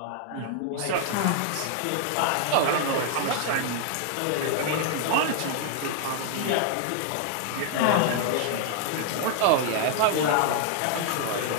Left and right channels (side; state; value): both; different; correlation 0.00